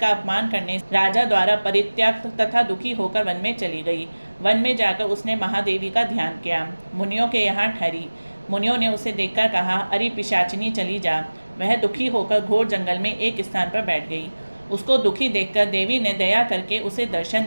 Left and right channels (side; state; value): both; inverted; correlation -1.00